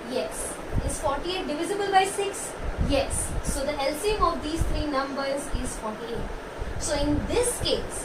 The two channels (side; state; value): both; identical; correlation 1.00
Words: Yes. Is 48 divisible by 6? Yes. So the LCM of these three numbers is 48. So in this